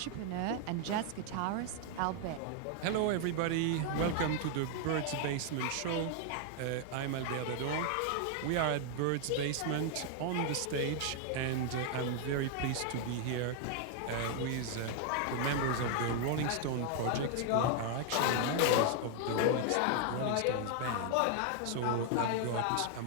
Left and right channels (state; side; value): different; both; correlation 0.00